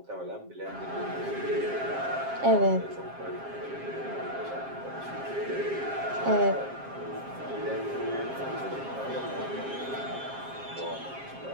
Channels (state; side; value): late; left; 7.5 ms